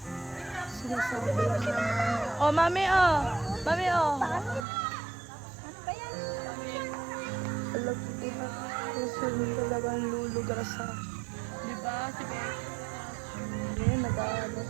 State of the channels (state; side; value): drops out; left; at 4.7 s